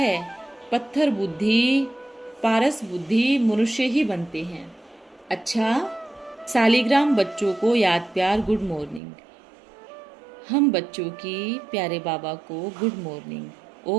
पत्थर बुद्धि पारस बुद्धि मनुष्य ही बनते हैं। अच्छा, सालिग्राम बच्चों को याद प्यार गुड मॉर्निंग। हम बच्चों की प्यारे बाबा को गुड मॉर्निंग।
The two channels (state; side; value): drops out; left; at 9.0 s